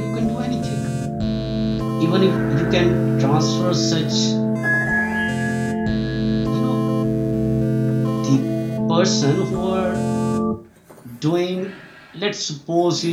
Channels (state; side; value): identical; both; correlation 1.00